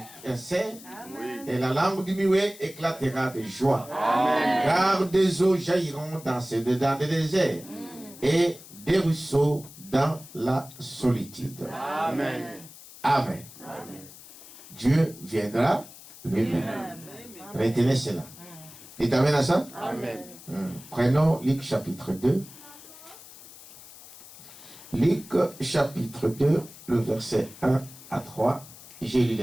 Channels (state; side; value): noise; left; hiss, 18 dB below the sound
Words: un cerf, et la langue du muet éclatera de joie. Amen. Car des eaux jailliront dans des déserts, et des ruisseaux dans la solitude. Amen. Amen. Amen. Dieu viendra lui-même. Retenez cela. Dites amen à ça? Amen. Prenons Luc chapitre 2. Luc chapitre 2, le verset 1 à 3. J'ai lu